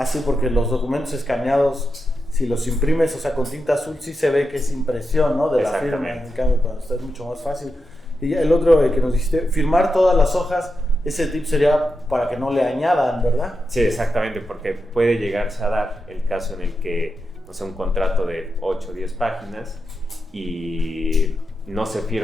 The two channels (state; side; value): normal; both; correlation 0.87